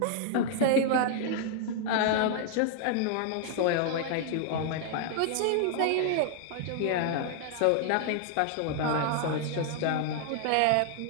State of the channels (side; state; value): both; different; correlation 0.00